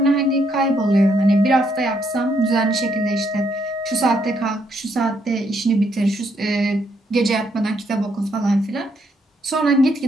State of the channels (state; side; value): normal; both; correlation 0.74